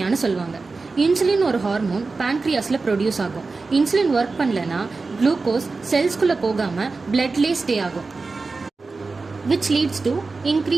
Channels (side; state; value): left; quieter; 4.0 dB